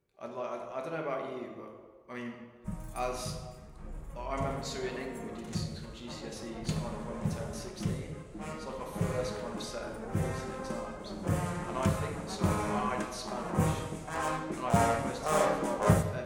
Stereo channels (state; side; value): identical; both; correlation 1.00